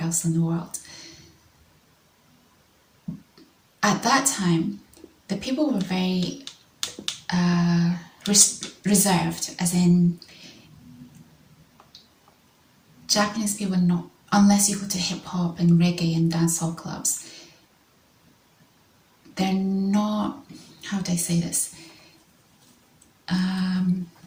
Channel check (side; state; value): both; identical; correlation 1.00